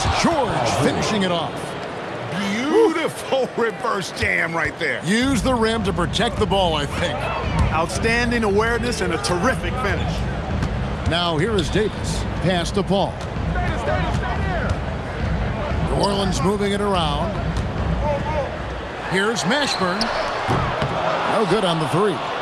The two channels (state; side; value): identical; both; correlation 1.00